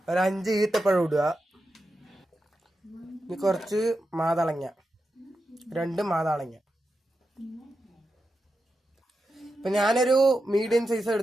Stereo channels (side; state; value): both; normal; correlation 0.89